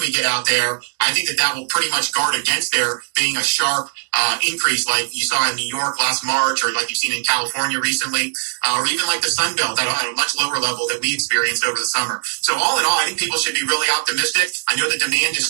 get out there, I think that will pretty much guard against there being a sharp increase like you saw in New York last March, or like you've seen in California recently, or even like the Sun Belt at a much lower level that we experienced over the summer. So all in all, I think people should be really optimistic. I know the demand is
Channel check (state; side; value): silent; left; digital silence